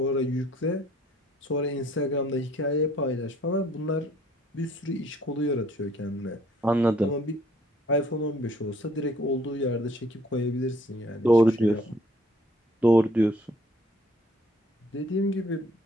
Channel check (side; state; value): both; normal; correlation 0.60